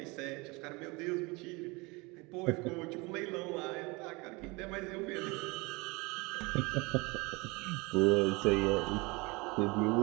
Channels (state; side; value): quieter; left; 26.1 dB